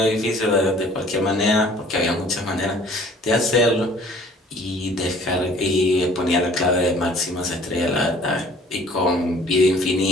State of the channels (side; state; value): both; normal; correlation 0.53